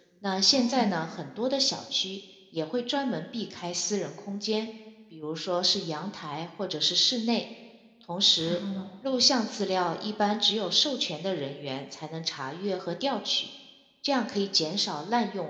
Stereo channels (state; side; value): identical; both; correlation 1.00